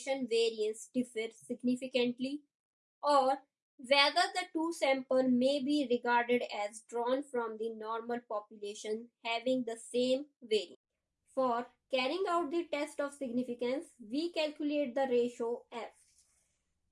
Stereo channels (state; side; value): identical; both; correlation 1.00